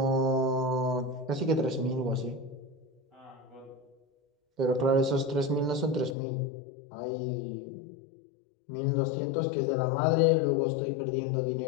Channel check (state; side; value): drops out; right; at 6.2 s